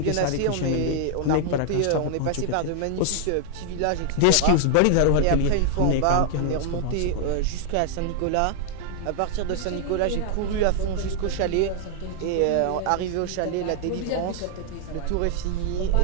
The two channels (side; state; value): both; different; correlation 0.00